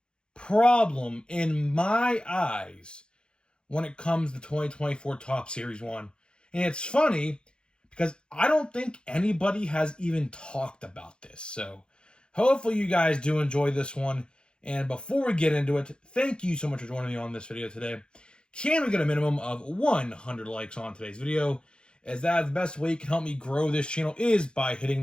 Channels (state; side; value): late; right; 0.051 ms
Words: problem in my eyes when it comes to 2024 Top Series 1. And it's funny because I don't think anybody has even talked about this. So hopefully you guys do enjoy this one. And before we get into it, thank you so much for joining me on this video today. Can we get a minimum of 100 likes on today's video? As that is the best way you can help me grow this channel is by hitting